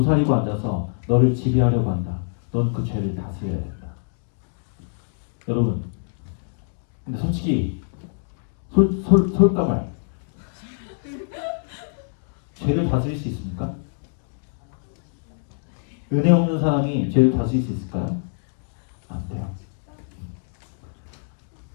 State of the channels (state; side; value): silent; right; digital silence